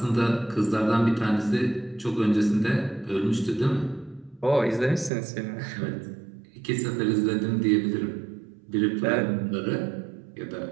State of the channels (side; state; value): left; drops out; at 5.1 s